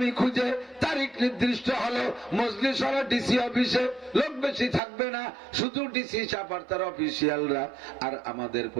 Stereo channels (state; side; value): drops out; left; at 4.8 s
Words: খুঁজে। তারিখ নির্দিষ্ট হলো, মজলিস হলো ডিসি অফিসে, লোক বেশি থাকবে না, শুধু ডিসি চাপার তার অফিসিয়ালরা। আর আমাদের